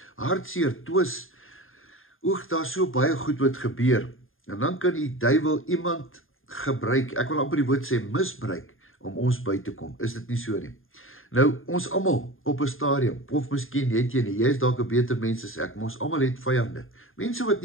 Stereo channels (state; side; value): late; right; 0.59 ms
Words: hartseer, twis, daar so baie goed wat gebeur, en dan kan die duiwel iemand gebruik, ek wil amper die woord sê misbruik, om ons by te kom, is dit nie so nie? Nou, ons almal op 'n stadium, of miskien het jy nie, jy is dalk 'n beter mens as ek, maar ons almal het vyande, mense wat